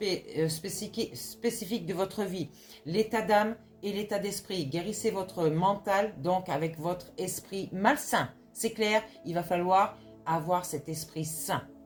spécifiques de votre vie? L'état d'âme et l'état d'esprit. Guérissez votre mental, donc avec votre esprit malsain. C'est clair, il va falloir avoir cet esprit sain.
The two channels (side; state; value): both; identical; correlation 1.00